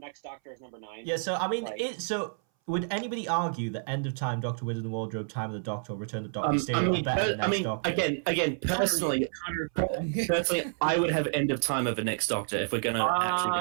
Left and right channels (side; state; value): left; silent; 58 dB below the other